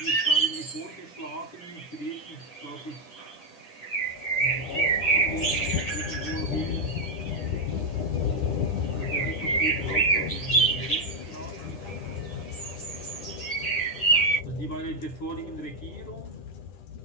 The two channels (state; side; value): late; right; 10 ms